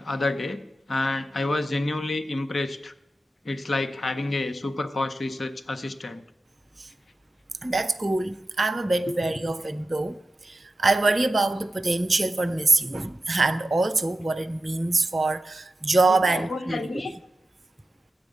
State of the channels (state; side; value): normal; both; correlation 0.93